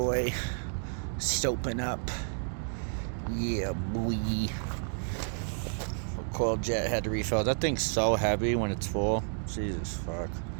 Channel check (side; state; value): left; silent; 57 dB below the other